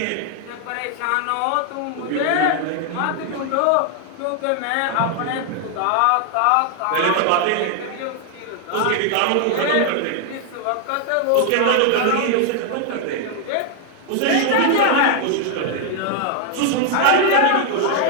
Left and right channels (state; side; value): different; both; correlation 0.00